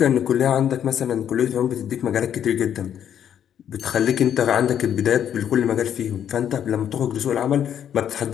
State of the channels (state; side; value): quieter; right; 9.5 dB